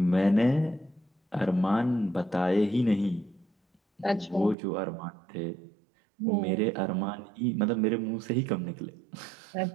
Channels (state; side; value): drops out; left; at 4.5 s